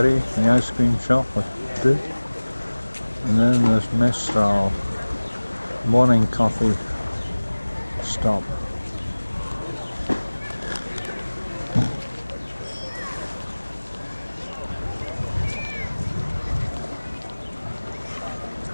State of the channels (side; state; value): both; inverted; correlation -1.00